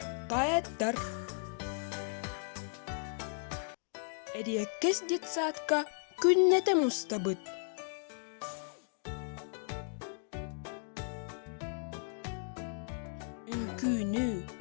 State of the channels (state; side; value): silent; right; digital silence